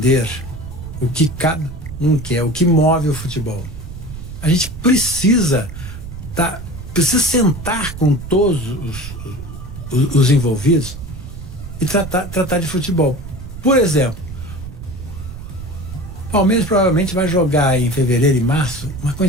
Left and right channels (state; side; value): noise; right; rumble, 11 dB below the sound